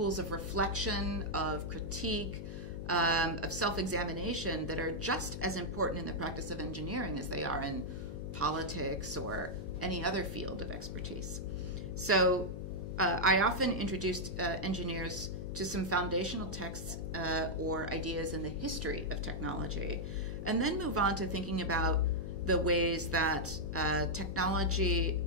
of reflection, of critique, of self-examination that are just as important in the practice of engineering as they are in politics or any other field of expertise. So I often introduced engineers to some foundational texts or ideas in the history of technology, and then move on to thinking about the ways that technology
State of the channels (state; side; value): noise; left; hum, 8 dB below the sound